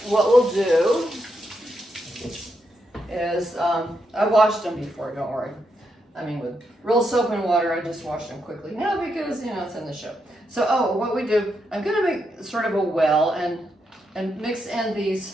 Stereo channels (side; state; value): both; normal; correlation 0.82